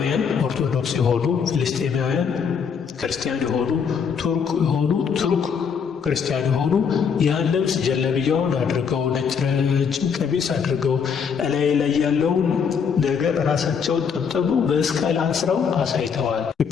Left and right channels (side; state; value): right; quieter; 6.6 dB